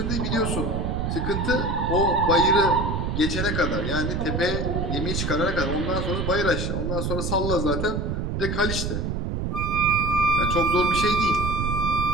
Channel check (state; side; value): noise; right; rumble, 1 dB below the sound